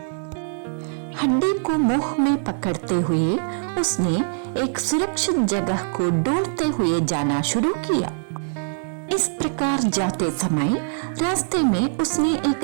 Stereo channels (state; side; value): silent; left; digital silence